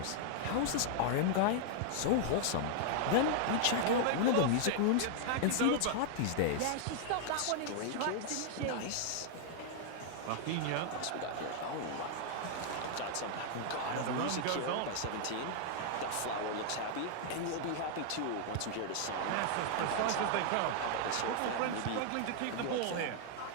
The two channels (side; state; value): both; different; correlation -0.01